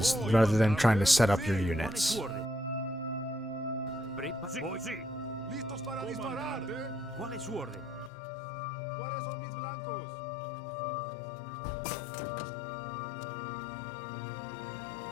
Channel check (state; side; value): drops out; right; at 8.1 s